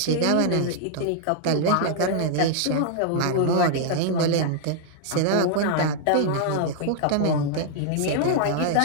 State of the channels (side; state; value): both; different; correlation 0.00